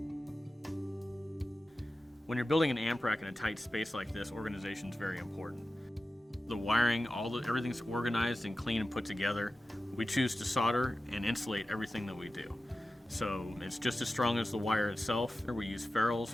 When you're building an amp rack in a tight space like this, organization is very important. The wiring, everything's organized and clean and put together. We choose to solder and insulate everything that we do. So it's just as strong as the wire itself. We use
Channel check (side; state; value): both; normal; correlation 0.94